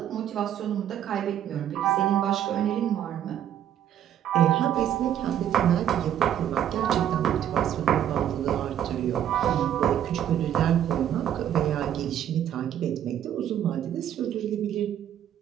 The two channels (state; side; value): quieter; left; 10.4 dB